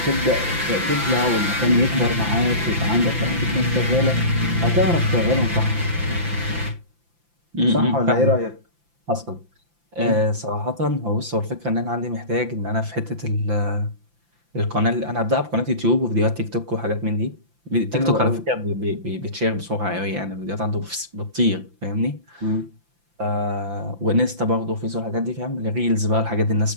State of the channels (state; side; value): late; left; 5.8 ms